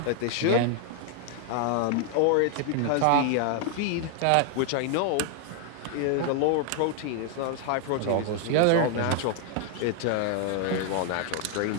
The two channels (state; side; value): different; both; correlation 0.00